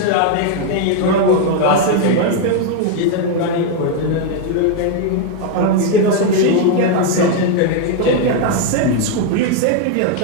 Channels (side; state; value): both; different; correlation 0.01